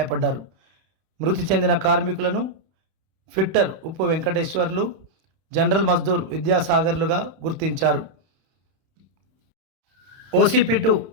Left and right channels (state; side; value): late; left; 31 ms